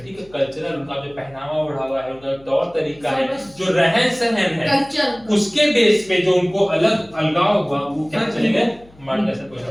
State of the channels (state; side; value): noise; left; hum, 26 dB below the sound